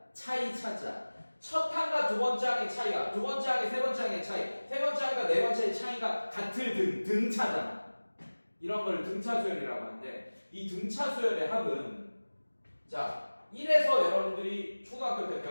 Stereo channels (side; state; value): both; inverted; correlation -1.00